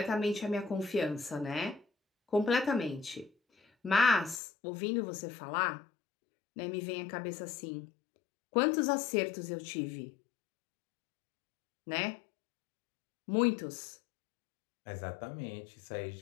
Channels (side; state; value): right; drops out; at 4.4 s